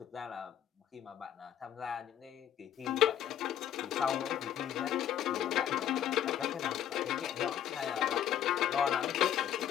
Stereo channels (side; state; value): right; quieter; 10.5 dB